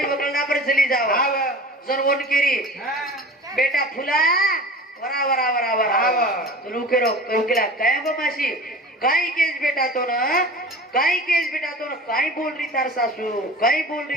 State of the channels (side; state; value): both; normal; correlation 0.38